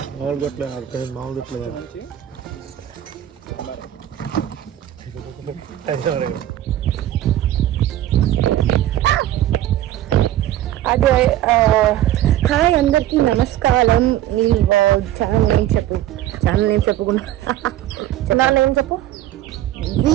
అదే. హాయ్ అందరికి నమస్కారం. నీ ఛానల్ నేమ్ చెప్పు. ఛానల్ నేమ్ చెప్పకుండా నా నేమ్ చెప్పు.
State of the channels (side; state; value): left; quieter; 13.0 dB